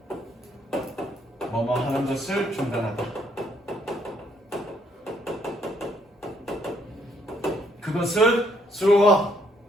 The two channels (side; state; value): both; normal; correlation 0.70